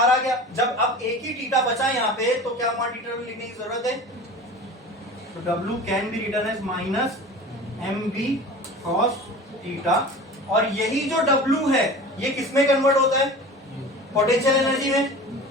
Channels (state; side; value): normal; both; correlation 0.37